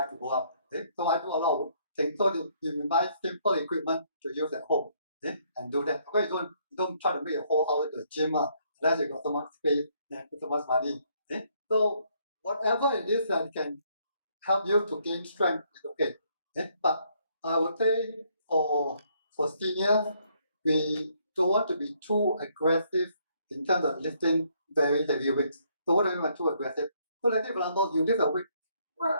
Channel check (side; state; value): both; inverted; correlation -0.69